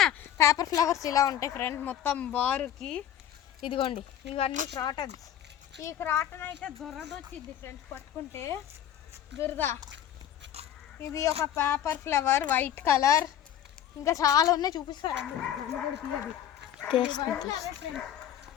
పేపర్ ఫ్లవర్స్ ఇలా ఉంటాయి ఫ్రెండ్స్ మొత్తం బారుకి. ఇదిగోండి ఇవన్నీ క్రాటన్స్. ఈ క్రాటన్ అయితే దురద వచ్చింది ఫ్రెండ్స్ పట్టుకుంటే, దురద. ఇది ఒక పేపర్ ఫ్లవర్, వైట్ కలర్. ఇంకా చాలా ఉన్నాయి చూపిస్తారండి.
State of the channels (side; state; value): right; quieter; 10.6 dB